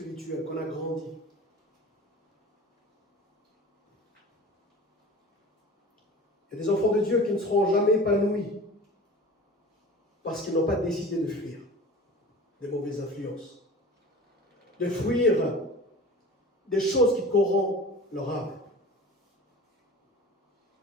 qu'on a grandi. Il y a des enfants de Dieu qui ne seront jamais épanouis parce qu'ils n'ont pas décidé de fuir des mauvaises influences, de fuir des choses qui corrompent leur âme.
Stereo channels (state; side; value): normal; both; correlation 0.38